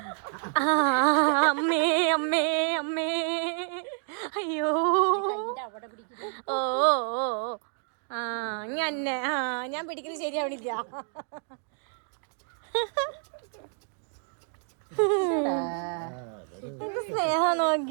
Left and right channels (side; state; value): left; silent; 55 dB below the other